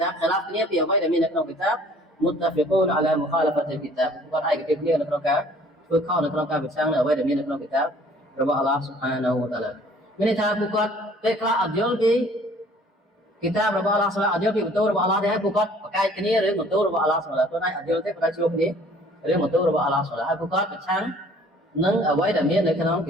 ខិលាហ្វគ្នាពីអ្វីដែលមាននៅក្នុងគីតាប متفقون على مخالفة الكتاب គាត់ឯកភាពគ្នានៅក្នុងការធ្វើខុសនៅក្នុងការប្រឆាំងនៅអ្វីដែលមាននៅក្នុងគិតាបរបស់អល់ឡោះ Subhanahu wa Ta'ala មានន័យថាពួកគាត់ពេលខ្លះអត់យល់ពីគិតាបរបស់អល់ឡោះ Subhanahu អត់យល់ពីបន្ទូលរបស់អល់ឡោះទេហើយពួកគាត់ប្រកែកគ្នារឿងបន្ទូលរបស់អល់ឡោះ Subhanahu ខ្លួនឯងអត់យល់ទេប៉ុន្តែជួបគ្នារឿងបន្ទូលរបស់អល់ឡោះ Subhanahu ហើយពួកគាត់ប្រឆាំងនឹងអ្វីដែលមាននៅក្នុងគ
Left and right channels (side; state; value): both; normal; correlation 0.54